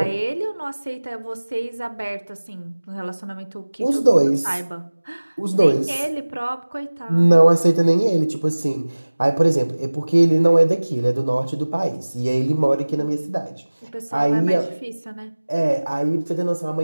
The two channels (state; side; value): inverted; both; correlation -1.00